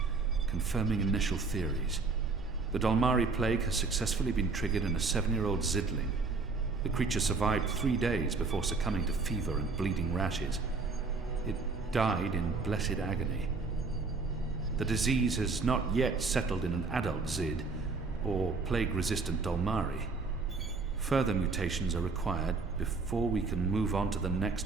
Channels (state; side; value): quieter; left; 4.2 dB